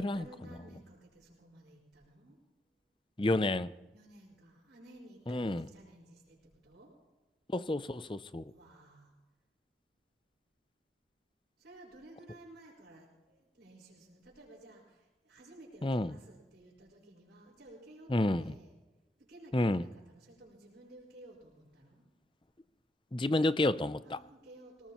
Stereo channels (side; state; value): both; normal; correlation 0.79